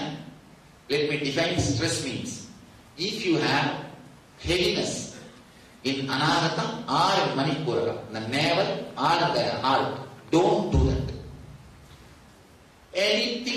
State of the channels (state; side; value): identical; both; correlation 1.00